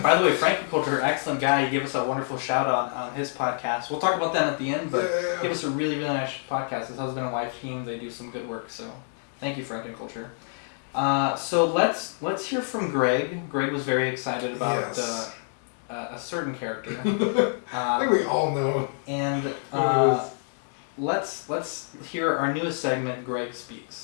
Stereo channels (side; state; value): right; silent; digital silence